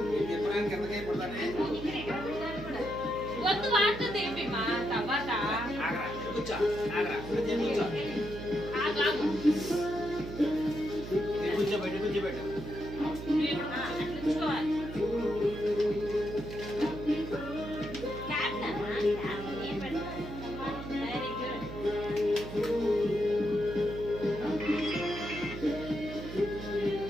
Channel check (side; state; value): right; noise; hum, 9 dB below the sound